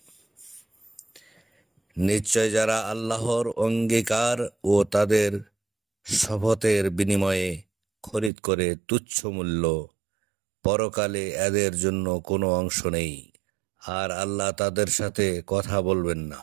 নিশ্চয় যারা আল্লাহর অঙ্গীকার ও তাদের শপথের বিনিময়ে খরিদ করে তুচ্ছ মূল্য, পরকালে এদের জন্য কোনো অংশ নেই, আর আল্লাহ তাদের সাথে কথা বলবেন না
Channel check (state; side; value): drops out; left; at 8.3 s